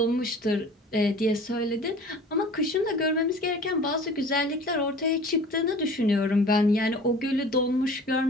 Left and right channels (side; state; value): both; normal; correlation 0.44